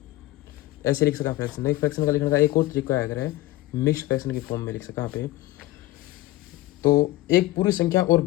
ऐसे लिख सका फ्रैक्शन। नहीं, फ्रैक्शन का लिखने का एक और तरीका है, अगर है मिक्स्ड फ्रैक्शन की फॉर्म में लिख सका यहाँ पे। तो एक पूरी संख्या और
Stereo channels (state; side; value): quieter; right; 17.1 dB